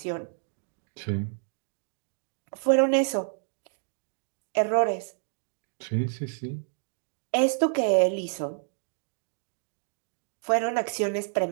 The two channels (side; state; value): left; silent; digital silence